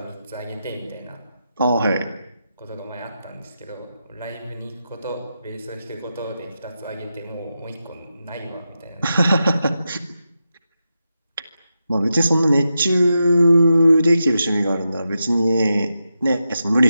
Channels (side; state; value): both; inverted; correlation -0.88